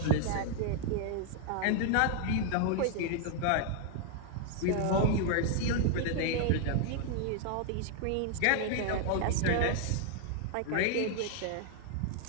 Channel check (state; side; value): different; both; correlation 0.00